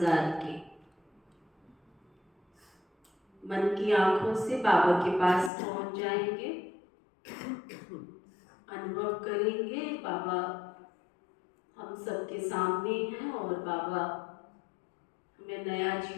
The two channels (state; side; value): drops out; right; at 5.5 s